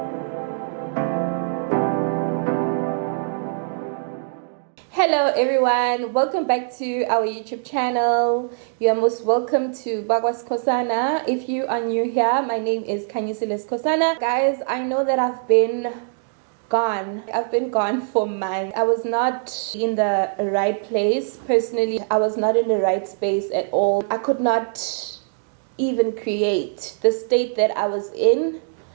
Hello everyone, welcome back to our YouTube channel. You are most welcome to Bakwa Skosana. If you are new here, my name is Khanyisile Skosana. Guys, I know that I've been gone for months. I was not in the right place. Personally, I was not in the right space at all. I could not even create the state that I was in.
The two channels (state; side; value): silent; left; digital silence